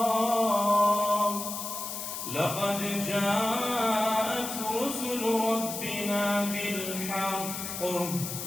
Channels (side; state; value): left; noise; hiss, 6 dB below the sound